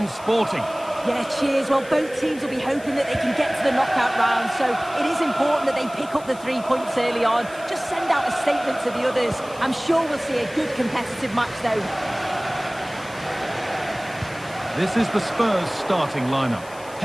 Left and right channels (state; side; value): noise; left; hiss, 21 dB below the sound